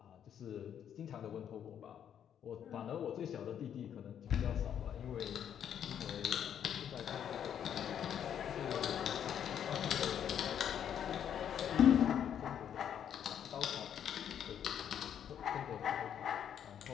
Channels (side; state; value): right; quieter; 9.1 dB